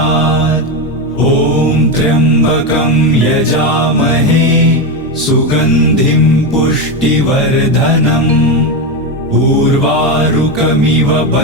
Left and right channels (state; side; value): normal; both; correlation 0.12